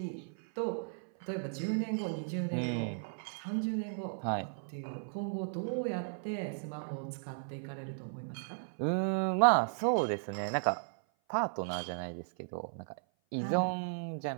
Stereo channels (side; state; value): left; silent; 54 dB below the other